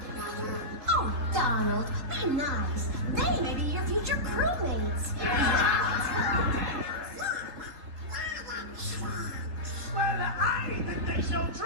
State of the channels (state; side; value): late; left; 3.6 ms